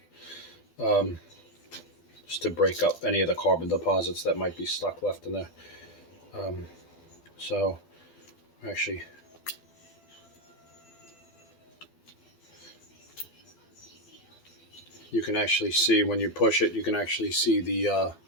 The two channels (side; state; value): right; late; 12 ms